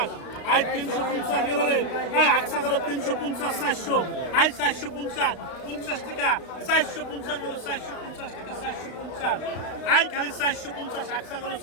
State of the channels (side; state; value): right; late; 32 ms